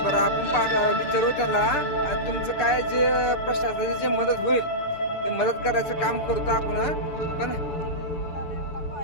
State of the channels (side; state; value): right; late; 6.9 ms